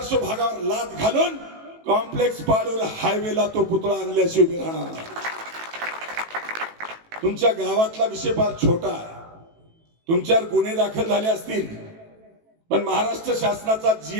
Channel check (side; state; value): left; late; 18 ms